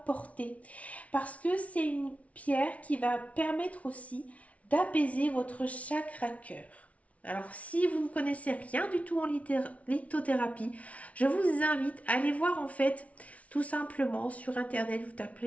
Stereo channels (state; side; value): late; right; 0.066 ms